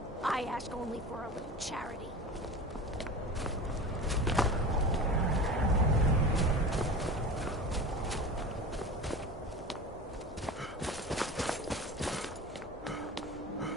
I ask only for a little charity.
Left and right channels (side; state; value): both; normal; correlation 0.33